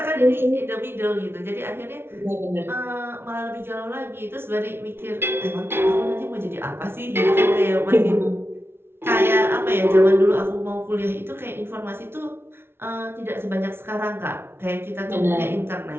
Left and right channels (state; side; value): late; left; 0.11 ms